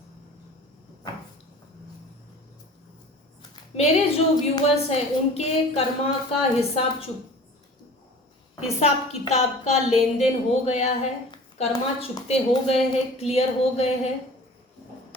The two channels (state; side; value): normal; both; correlation 0.43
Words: मेरे जो व्यूअर्स हैं उनके कर्मा का हिसाब किताब का लेन देन हो गया है, कर्मा चुकते हो गए हैं, क्लियर हो गए हैं।